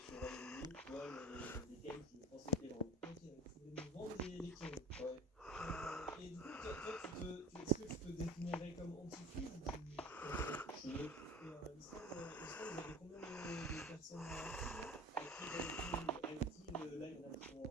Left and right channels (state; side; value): normal; both; correlation 0.41